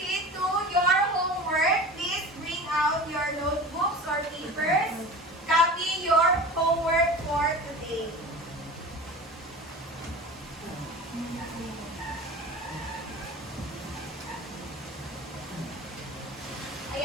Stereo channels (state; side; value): normal; both; correlation 0.34